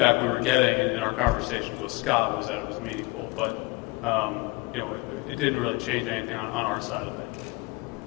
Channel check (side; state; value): right; quieter; 23.9 dB